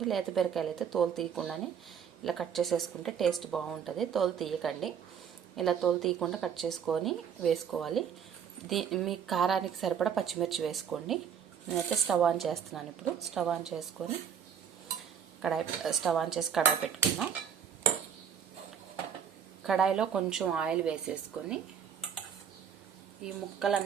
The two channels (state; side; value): quieter; left; 7.7 dB